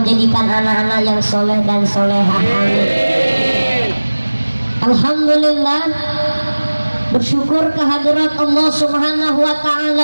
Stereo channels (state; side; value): inverted; both; correlation -1.00